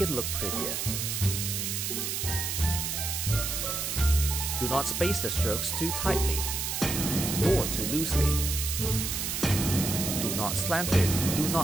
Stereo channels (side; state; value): right; noise; hiss, 2 dB below the sound